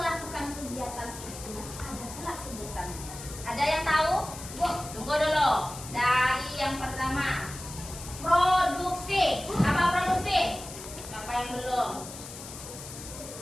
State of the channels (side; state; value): left; noise; hiss, 12 dB below the sound